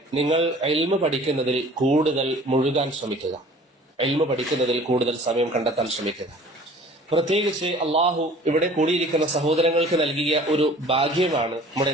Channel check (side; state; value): both; normal; correlation 0.48